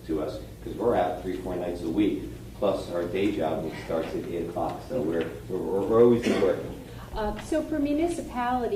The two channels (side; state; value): both; identical; correlation 1.00